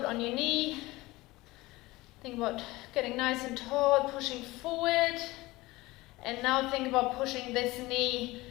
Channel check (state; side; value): quieter; right; 20.2 dB